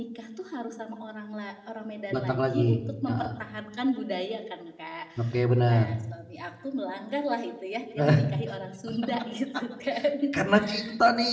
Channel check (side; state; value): both; identical; correlation 1.00